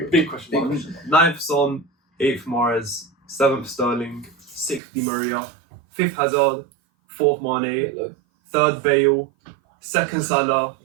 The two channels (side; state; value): left; drops out; at 4.8 s